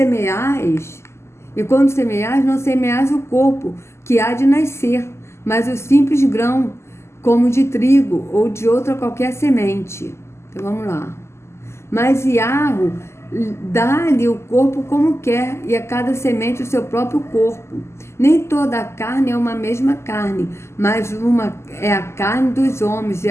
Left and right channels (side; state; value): right; late; 0.13 ms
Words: não semeais o corpo, que há de nascer, mas o simples grão, como de trigo ou de outra qualquer semente. Então vamos lá. Mas Yahweh dá-lhe o corpo como quer, e a cada semente o seu próprio corpo. Nem toda a carne é uma mesma carne, mas uma é a carne dos homens, e